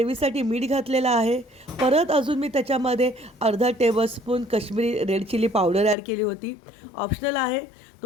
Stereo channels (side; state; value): right; drops out; at 6.0 s